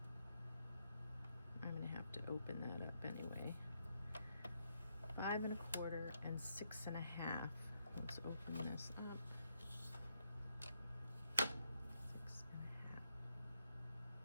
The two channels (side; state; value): both; inverted; correlation -0.79